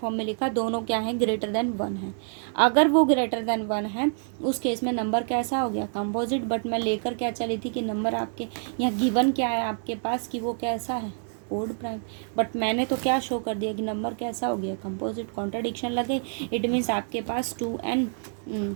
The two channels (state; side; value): silent; left; 60 dB below the other